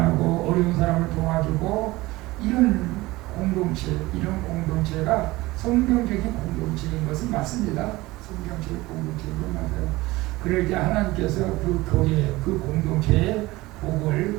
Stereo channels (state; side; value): quieter; left; 19.9 dB